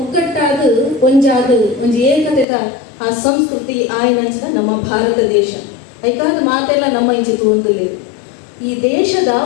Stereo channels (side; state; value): right; drops out; at 2.5 s